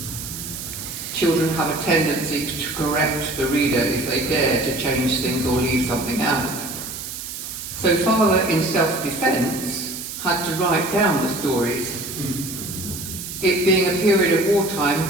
Children have a tendency to correct the reader if they dare to change things or leave something out. So Father, in self-defence, had to write down the stories. It being a period of wartime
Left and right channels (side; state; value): right; noise; hiss, 8 dB below the sound